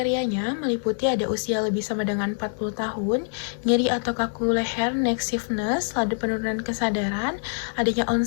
meliputi ada usia lebih sama dengan 40 tahun, nyeri atau kaku leher, neck stiffness, laju penurunan kesadaran, adanya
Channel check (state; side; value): silent; right; 59 dB below the other